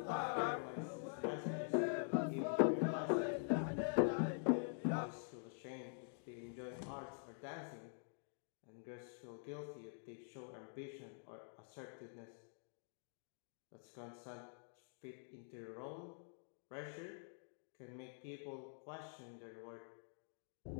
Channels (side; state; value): right; silent; digital silence